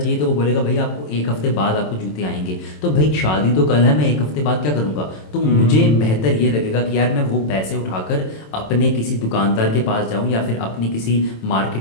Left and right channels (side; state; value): right; late; 27 ms